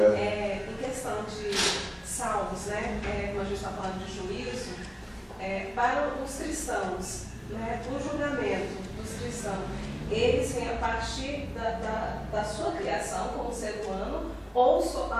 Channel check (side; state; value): both; identical; correlation 1.00